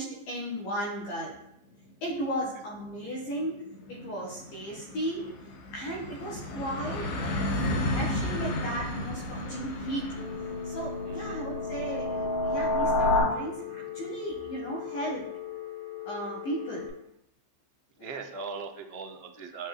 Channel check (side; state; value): right; late; 15 ms